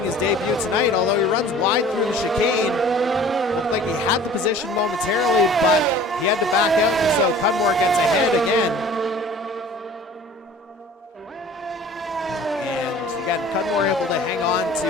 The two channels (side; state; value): both; normal; correlation 0.46